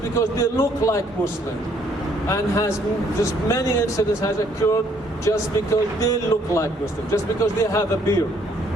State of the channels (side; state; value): both; normal; correlation 0.66